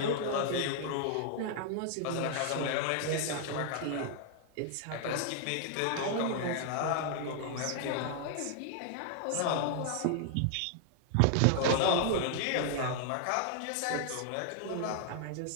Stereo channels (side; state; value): both; different; correlation 0.00